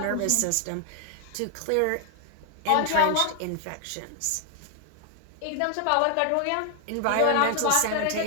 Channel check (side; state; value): both; different; correlation 0.00